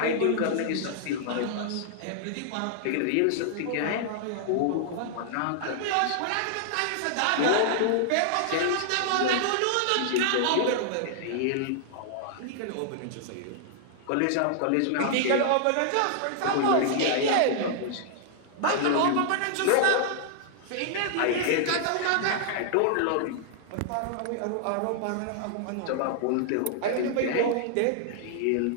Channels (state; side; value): different; both; correlation -0.01